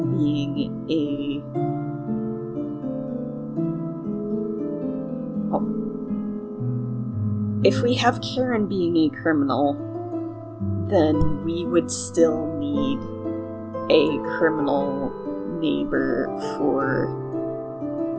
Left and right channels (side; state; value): both; identical; correlation 1.00